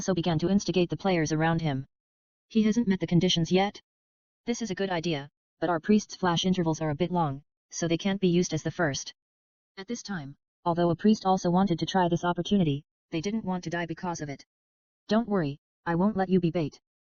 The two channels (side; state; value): both; identical; correlation 1.00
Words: began to instigate the players around him. He hasn't met the conditions yet? This is a good idea, but our priest's flash intervals are a bit long, so they can't be used as the first. At this time, although a priest also wanted to try this opportunity, they didn't want to die because of it. Don't worry, I won't let you be bait.